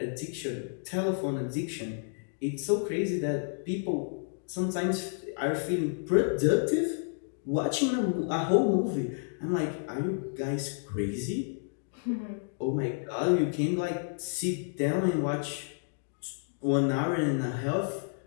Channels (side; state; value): right; silent; digital silence